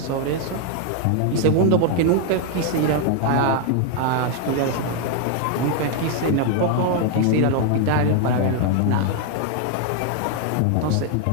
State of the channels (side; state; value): both; different; correlation 0.00